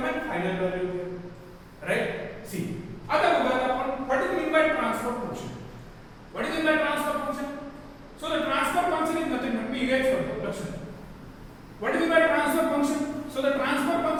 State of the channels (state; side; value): identical; both; correlation 1.00